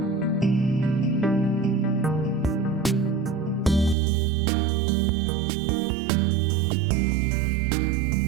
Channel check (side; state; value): left; drops out; at 4.0 s